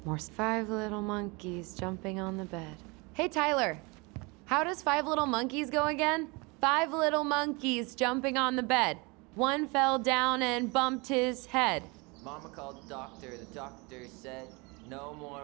More 5 little monkeys jumping on the bed. Hey, Tyler. How does 5 little monkeys go again? 5 little monkeys jumping on the bed. One fell down and bumped his head. Mama called the doctor. The doctor said, no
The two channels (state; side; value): quieter; left; 27.7 dB